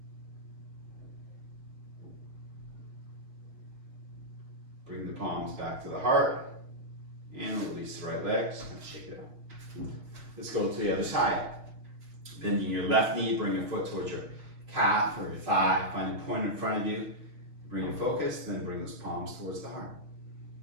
Bring the palms back to the heart and release the right leg. Just kind of shake it out. Let's go to the other side. Bending your left knee, bring your foot towards your calf or your thigh. Find a point in front of you. Bring your focus, then bring those palms towards the heart.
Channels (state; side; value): late; left; 6.4 ms